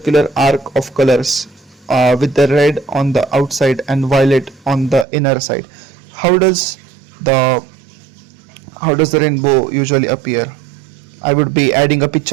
arc of colors with the red on the outside and violet on the inner side. How does the rainbow usually appear? I would be adding a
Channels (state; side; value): drops out; left; at 5.1 s